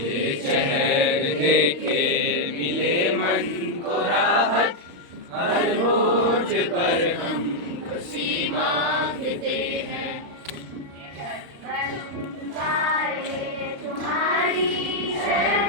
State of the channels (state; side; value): late; left; 35 ms